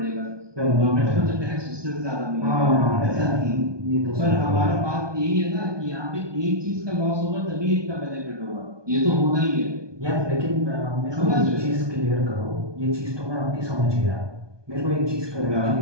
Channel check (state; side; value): late; left; 1.2 ms